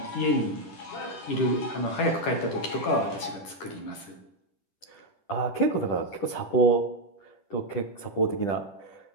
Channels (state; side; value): late; right; 10 ms